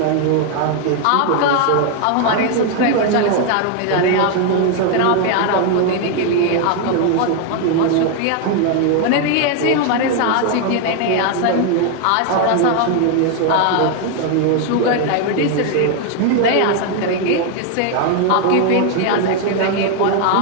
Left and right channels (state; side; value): different; both; correlation 0.01